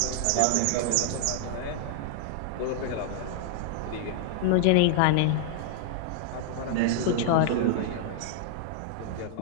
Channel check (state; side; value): different; both; correlation -0.01